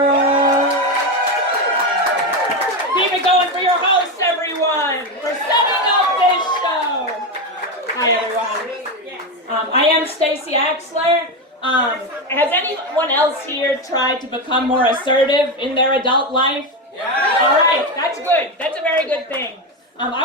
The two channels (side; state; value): both; normal; correlation 0.13